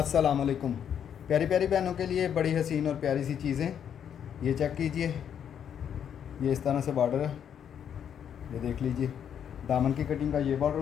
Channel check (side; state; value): right; quieter; 8.6 dB